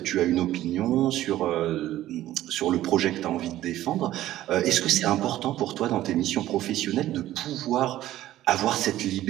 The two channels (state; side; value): quieter; left; 14.2 dB